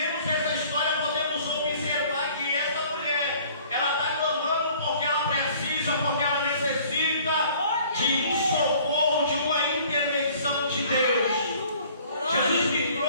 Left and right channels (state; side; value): inverted; both; correlation -0.53